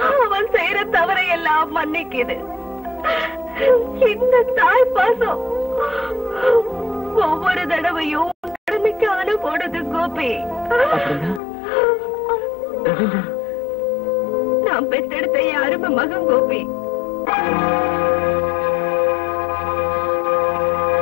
அவன் செய்யற தவறை எல்லாம் மன்னிக்குது. இந்த தாய் பாசம் ஒவ்வொரு தடவையும் கடமைக்கு அனுப்போடுது கோபி. நான் பெத்தெடுத்த என் அருமை மகன் கோபி.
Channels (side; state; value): right; drops out; at 11.4 s